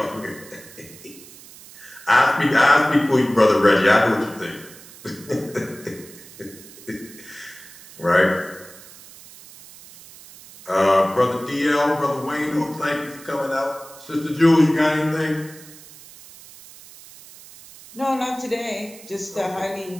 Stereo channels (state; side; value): noise; right; hiss, 20 dB below the sound